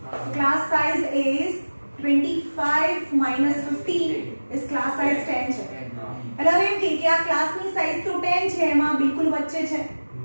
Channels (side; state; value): both; inverted; correlation -1.00